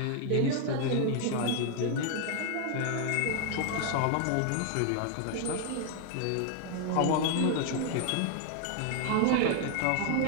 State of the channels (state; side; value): different; both; correlation 0.00